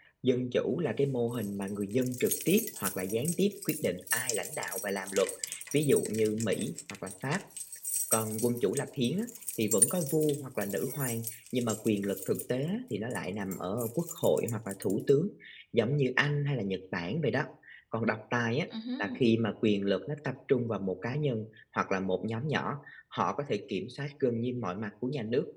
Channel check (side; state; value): both; identical; correlation 1.00